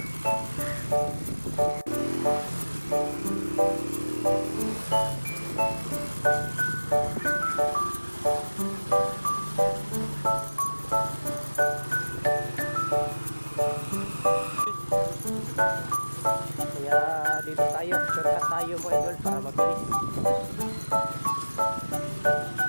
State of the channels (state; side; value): inverted; both; correlation -1.00